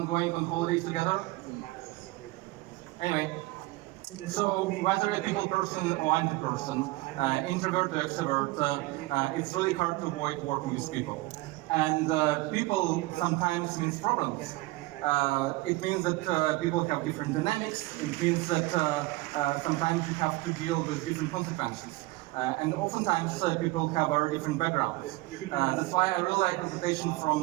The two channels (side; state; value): left; quieter; 20.7 dB